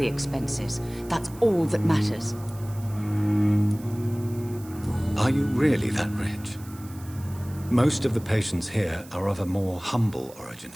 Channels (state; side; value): noise; right; hiss, 21 dB below the sound